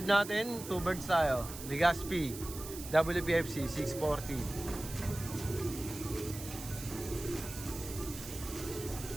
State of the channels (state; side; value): noise; right; hiss, 11 dB below the sound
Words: natin. Two birds tayo. Legazpi. WPFC 640.